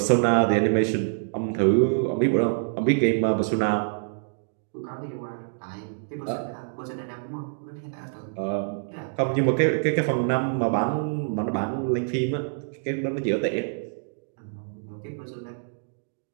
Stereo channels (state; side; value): silent; left; digital silence